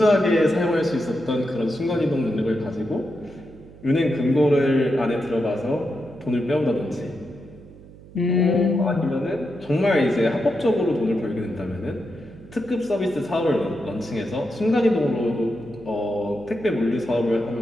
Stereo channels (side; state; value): right; noise; hum, 20 dB below the sound